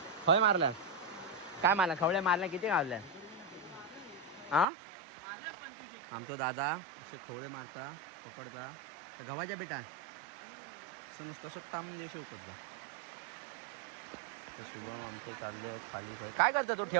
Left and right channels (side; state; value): left; drops out; at 4.7 s